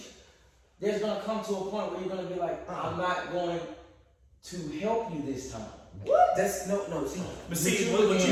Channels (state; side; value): identical; both; correlation 1.00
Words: there's gonna come to a point where you're gonna be like, I'm not going to help you this time. What? That's no. See, But see, You